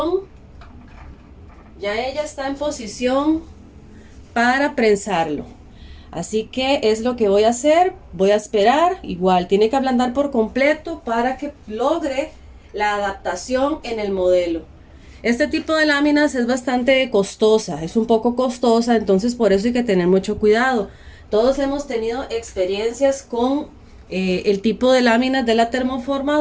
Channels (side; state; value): both; identical; correlation 1.00